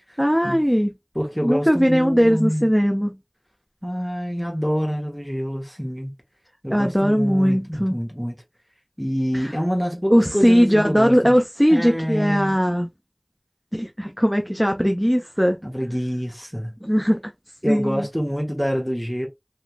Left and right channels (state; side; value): identical; both; correlation 1.00